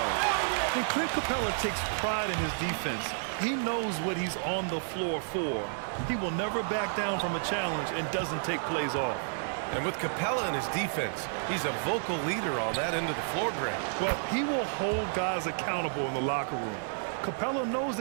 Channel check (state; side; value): silent; left; digital silence